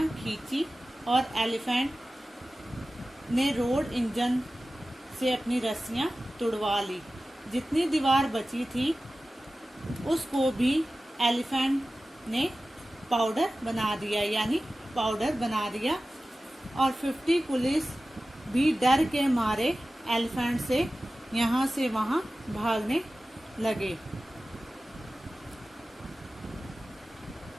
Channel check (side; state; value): both; normal; correlation 0.95